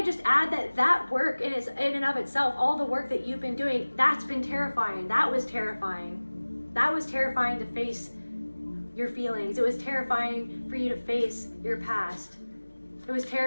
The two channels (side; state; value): both; inverted; correlation -1.00